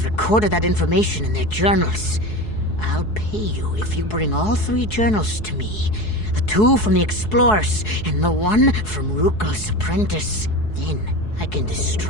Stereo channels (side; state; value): right; late; 4.7 ms